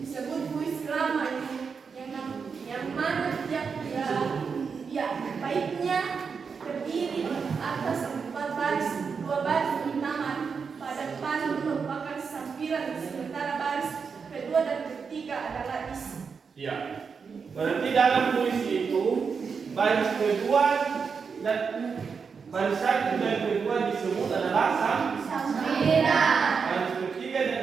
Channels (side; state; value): left; quieter; 5.7 dB